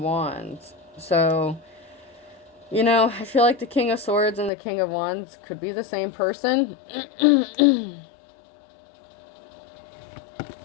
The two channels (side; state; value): right; drops out; at 4.5 s